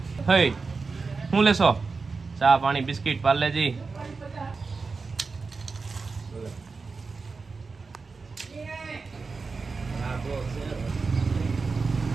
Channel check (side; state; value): left; quieter; 4.4 dB